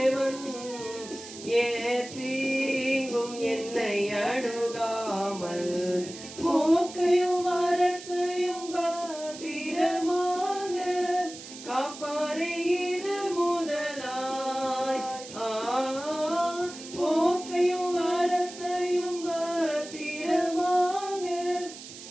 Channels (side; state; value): right; noise; hiss, 14 dB below the sound